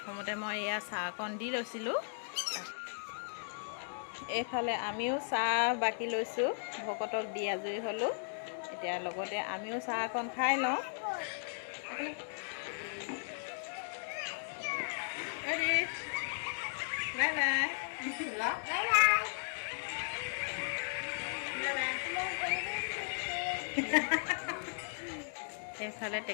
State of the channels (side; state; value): right; silent; digital silence